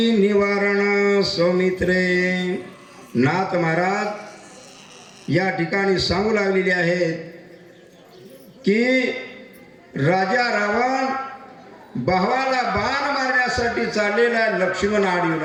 निवारण सौमित्रे. नाथ महाराज या ठिकाणी सांगू लागलेले आहेत की राजा रावण भावाला बाण मारण्यासाठी चाललेला लक्ष्मण आडीवर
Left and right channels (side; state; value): both; identical; correlation 1.00